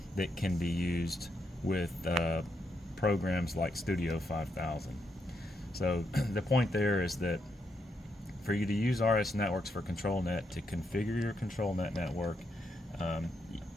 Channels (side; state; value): both; normal; correlation 0.80